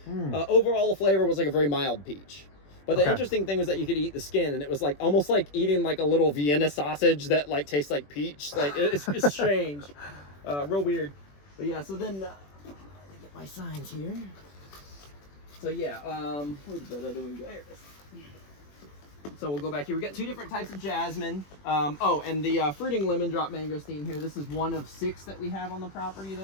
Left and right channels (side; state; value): right; late; 21 ms